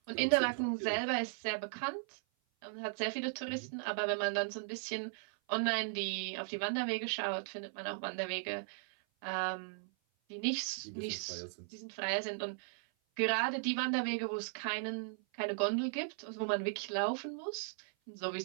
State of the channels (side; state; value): left; silent; 53 dB below the other